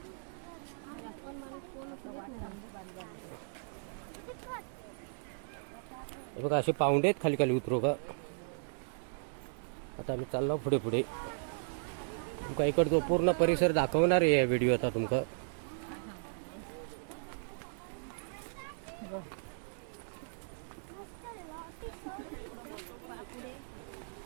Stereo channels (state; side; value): silent; left; digital silence